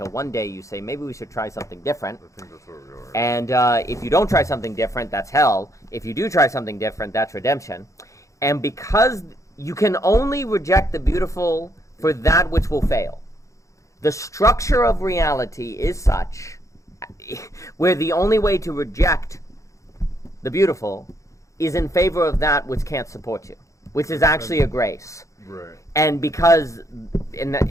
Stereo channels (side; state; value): right; late; 0.15 ms